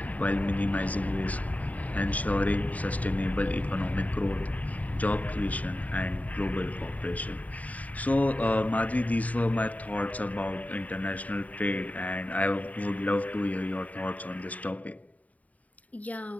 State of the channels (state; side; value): late; right; 0.071 ms